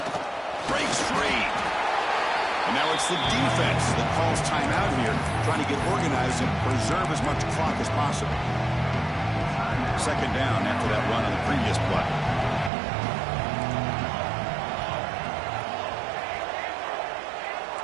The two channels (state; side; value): drops out; left; at 12.7 s